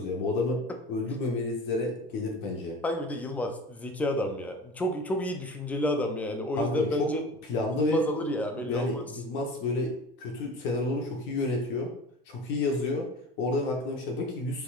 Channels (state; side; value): normal; both; correlation 0.37